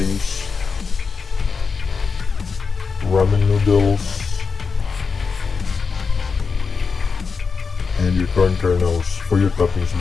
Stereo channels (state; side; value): quieter; right; 5.1 dB